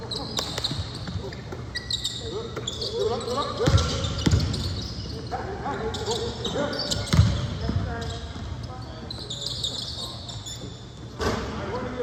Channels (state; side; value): identical; both; correlation 1.00